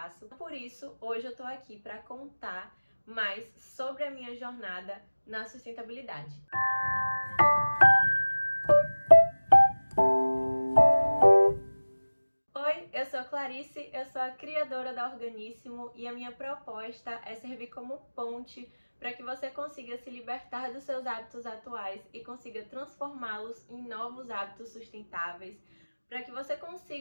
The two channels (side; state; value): both; inverted; correlation -1.00